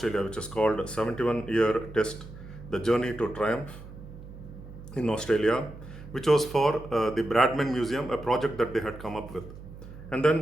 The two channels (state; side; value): noise; right; hum, 15 dB below the sound